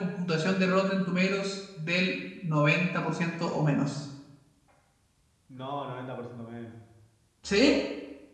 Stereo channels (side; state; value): both; identical; correlation 1.00